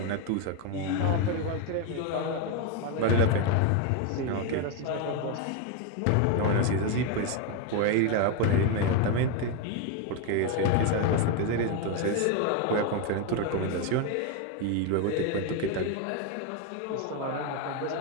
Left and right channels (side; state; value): both; different; correlation 0.02